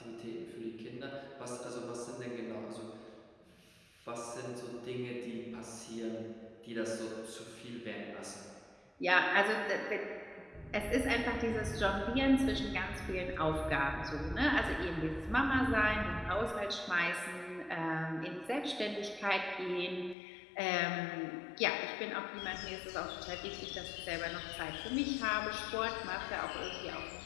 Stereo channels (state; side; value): drops out; right; at 20.2 s